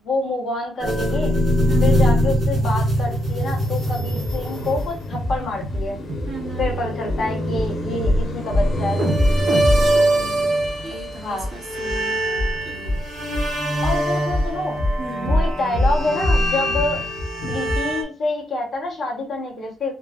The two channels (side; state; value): both; normal; correlation 0.81